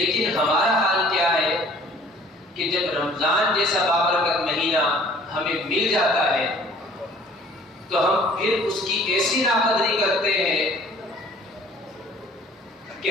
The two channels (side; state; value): both; normal; correlation 0.53